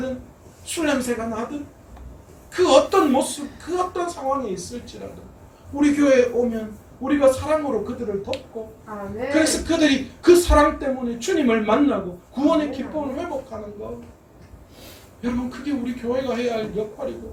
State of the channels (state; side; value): identical; both; correlation 1.00